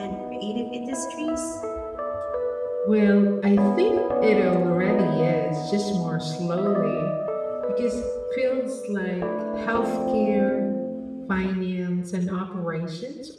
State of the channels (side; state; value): both; identical; correlation 1.00